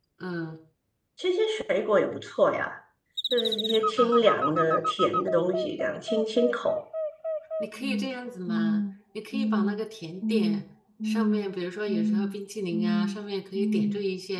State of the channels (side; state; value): both; identical; correlation 1.00